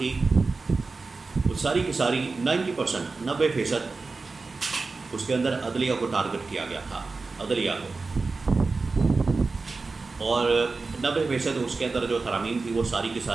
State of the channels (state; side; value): quieter; left; 4.0 dB